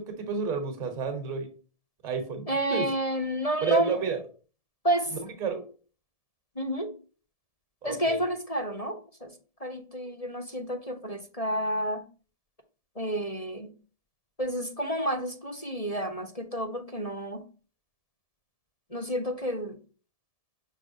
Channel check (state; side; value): late; right; 1.7 ms